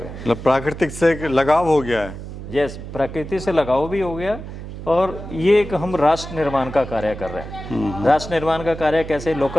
मतलब प्राकृतिक से एक लगाव हो गया है। यस, प्रकृति से लगाव भी हो गया और ये एक हम राष्ट्र निर्माण का कार्य कर रहे हैं। राष्ट्र निर्माण का कार्य कैसे?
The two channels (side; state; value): right; noise; hum, 10 dB below the sound